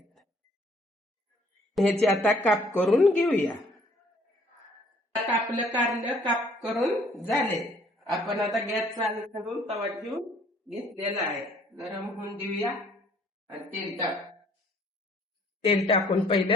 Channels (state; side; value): normal; both; correlation 0.60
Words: ह्याचे आता काप करून घेऊया. आपलं कारलं काप करून झाले. आपण आता गॅस चालू करून तवा ठेवून घेतलेला आहे. गरम होऊन देऊया आणि तेल टाकून